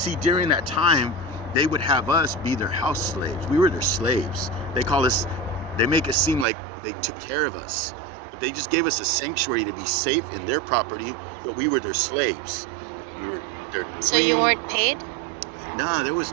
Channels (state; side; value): drops out; left; at 6.5 s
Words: during that time, they would have us be their house slaves. We were their slaves. They make it seem like they took care of us, but they just gave us a sanctuary to be safe in their property, but we were their slaves. We were their queen. So you weren't paid? Nah, there was